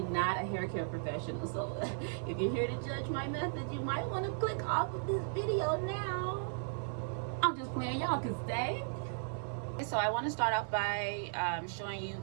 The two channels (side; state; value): left; silent; 54 dB below the other